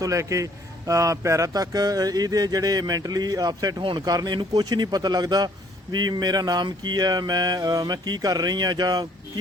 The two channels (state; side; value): normal; both; correlation 0.61